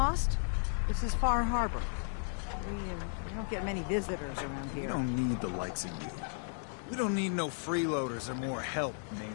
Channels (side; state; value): right; silent; 55 dB below the other